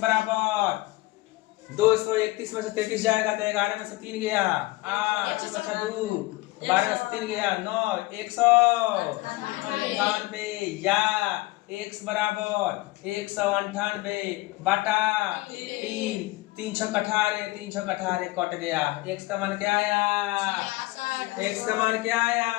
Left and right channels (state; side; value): quieter; right; 20.4 dB